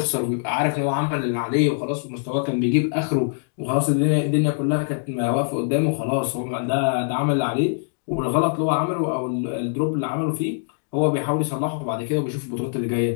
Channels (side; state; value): right; silent; digital silence